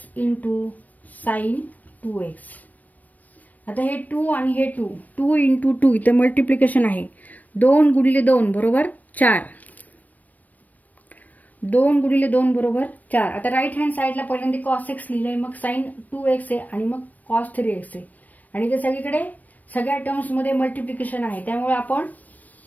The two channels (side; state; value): right; late; 0.078 ms